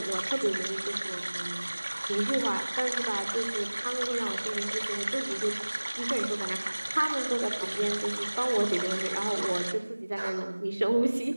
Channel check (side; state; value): both; inverted; correlation -1.00